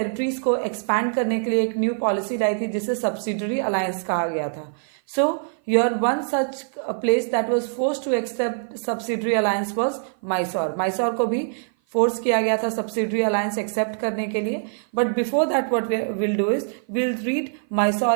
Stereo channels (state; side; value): silent; left; 55 dB below the other